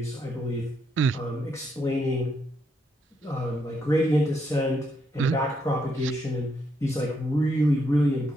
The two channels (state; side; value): normal; both; correlation 0.77